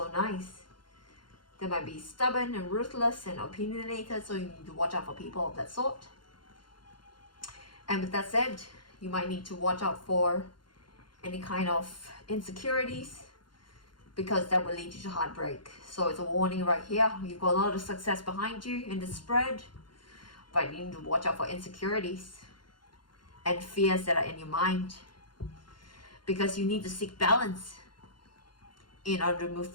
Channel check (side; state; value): right; late; 0.72 ms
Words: nice. They might be stubborn and ruthless and opinionated, so you need to watch out for people of that sort. And with that said, you might need to watch out for any kind of insecurities, because that will lead you to heartbreak. So it's a warning right here. You've got a lot of success behind you in the spread, but you need to watch out for insecurities and fears that are in your mind, because you need to seek balance in order to move